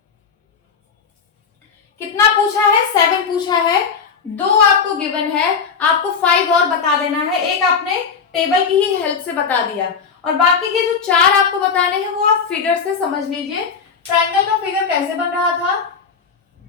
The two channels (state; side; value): quieter; right; 6.0 dB